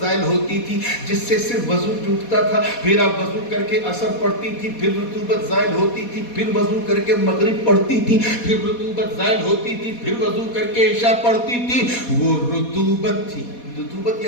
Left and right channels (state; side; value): late; right; 4.2 ms